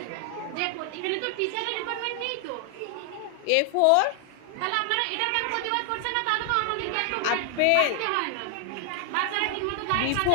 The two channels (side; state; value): both; different; correlation 0.00